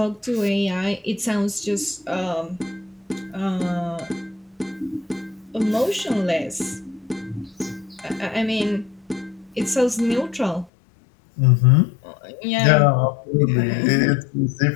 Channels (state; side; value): drops out; right; at 10.7 s